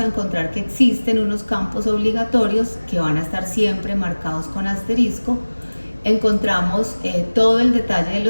encontrar que existen unos campos obligatorios que van a estar siempre marcados con asterisco. Encontramos todo el detalle de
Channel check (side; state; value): both; inverted; correlation -1.00